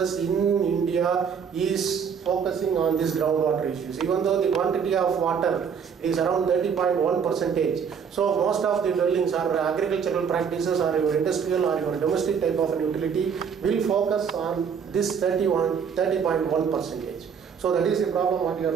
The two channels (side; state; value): left; quieter; 6.9 dB